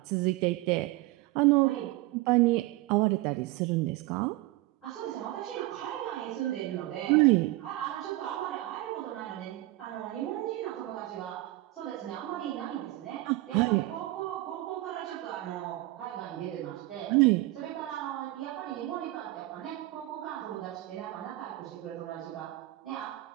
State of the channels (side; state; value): left; quieter; 18.3 dB